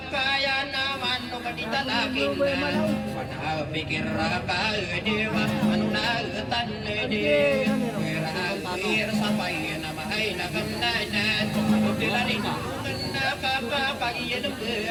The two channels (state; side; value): identical; both; correlation 1.00